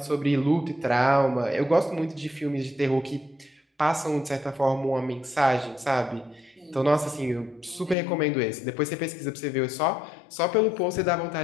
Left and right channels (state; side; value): drops out; right; at 8.0 s